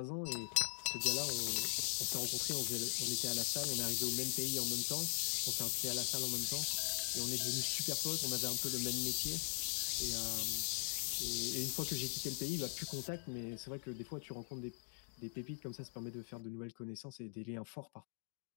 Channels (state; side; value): silent; right; digital silence